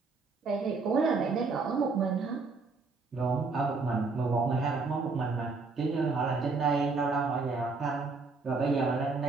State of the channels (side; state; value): left; quieter; 4.2 dB